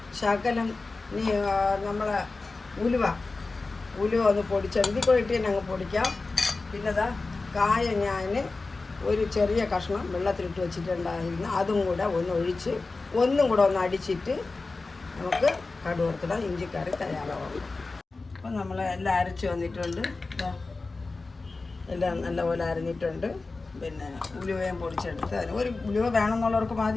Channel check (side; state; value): right; quieter; 3.7 dB